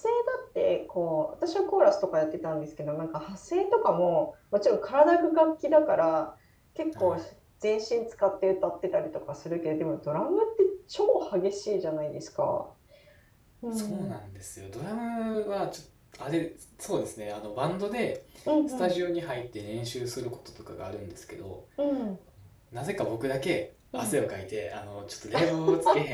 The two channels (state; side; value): identical; both; correlation 1.00